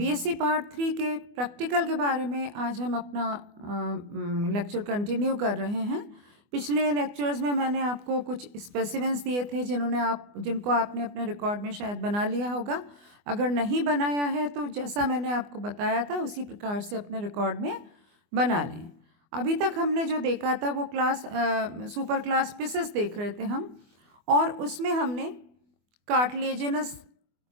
part 3 के practical के बारे में आज हम अपना लेक्चर कंटिन्यू कर रहे हैं। पिछले लेक्चर्स में मैंने आपको कुछ स्पेसिमेंस दिए थे जिनको आपने अपने रिकॉर्ड में शायद बना लिया होगा। अगर नहीं बनाया है तो जैसा मैंने आपको बताया था उसी प्रकार से अपने रिकॉर्ड में बना लें। अभी तक हमने जो देखा था वो सुपर क्लास पिसेस देख रहे थे हम, और उसमें हमने कार्टिलेजिनस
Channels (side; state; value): left; late; 24 ms